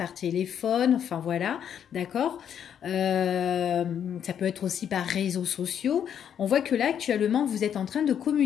téléphone, enfin voilà, d'accord. Ça peut être aussi par réseaux sociaux. On voit que là, actuellement, vous êtes en train de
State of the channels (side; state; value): right; quieter; 8.8 dB